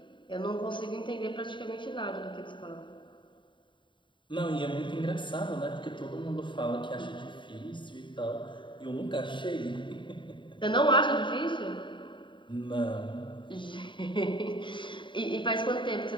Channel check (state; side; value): late; right; 0.23 ms